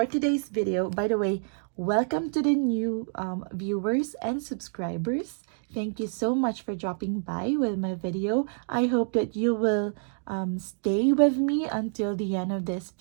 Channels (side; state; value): left; silent; digital silence